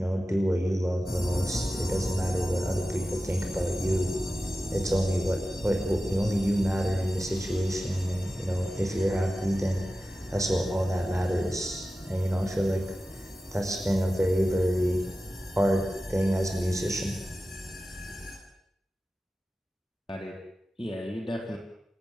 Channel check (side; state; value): both; normal; correlation 0.94